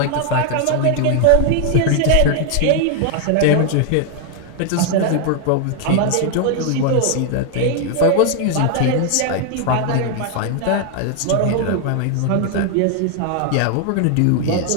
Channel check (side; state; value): both; different; correlation 0.00